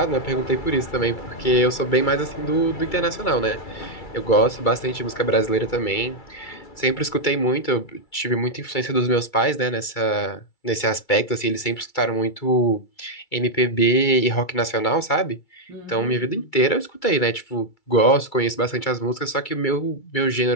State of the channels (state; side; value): late; right; 2.3 ms